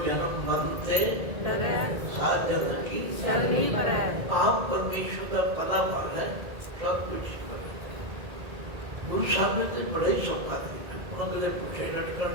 जन्म मरण से साथ जन्म की, आप परमेश्वर का पता पड़ है, सब कुछ। गुरु साहब ने तो बड़ा ही सौखा तरीका, उन्होंने कदे पूछे लटकन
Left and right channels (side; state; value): left; late; 1.7 ms